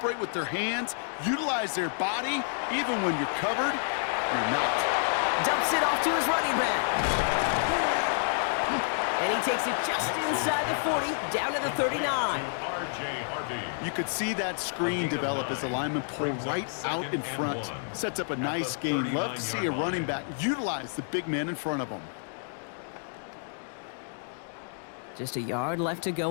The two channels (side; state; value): right; silent; digital silence